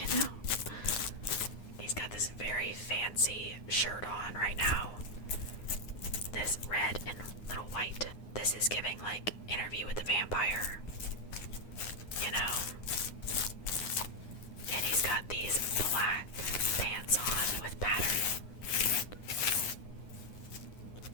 know. He's got this very fancy shirt on right now. This red and little white. This is giving like Interview with the Vampire, you know. And he's got these black pants on with pattern.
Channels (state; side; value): late; right; 9.7 ms